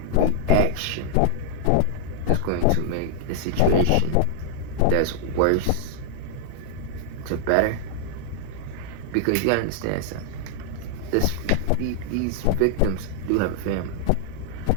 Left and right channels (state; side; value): different; both; correlation 0.00